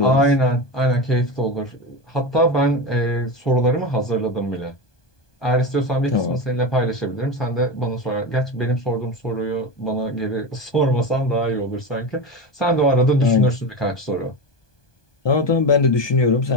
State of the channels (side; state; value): right; late; 1.2 ms